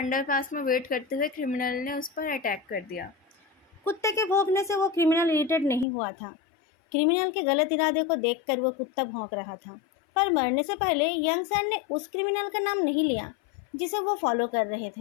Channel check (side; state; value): right; drops out; at 5.9 s